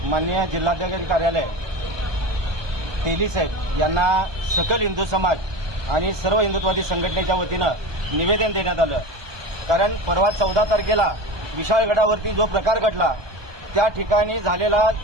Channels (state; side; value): late; left; 1.2 ms